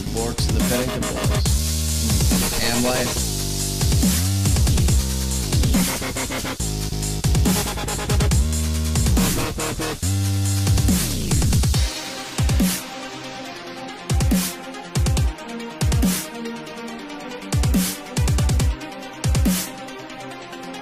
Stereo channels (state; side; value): identical; both; correlation 1.00